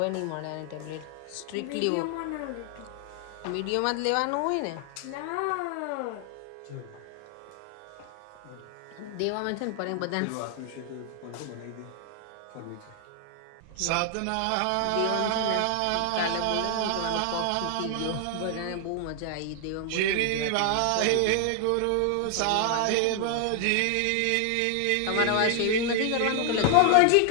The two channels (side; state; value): both; different; correlation 0.00